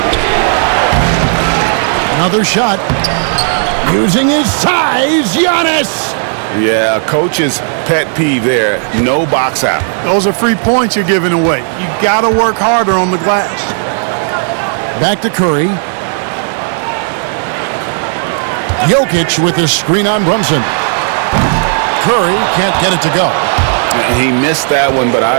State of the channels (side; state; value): left; silent; digital silence